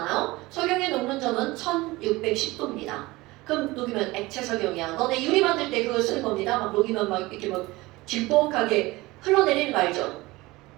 석영의 녹는 점은 1610도입니다. 그럼 녹이면 액체 석영이야. 너네 유리 만들 때 그거 쓰는 겁니다. 막 녹이면 막 이렇게 막 질퍽하게 흘러내리는 거 알죠?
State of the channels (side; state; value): left; quieter; 20.7 dB